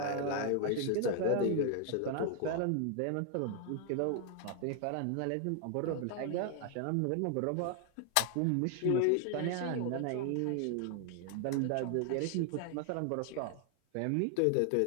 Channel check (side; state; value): both; different; correlation 0.00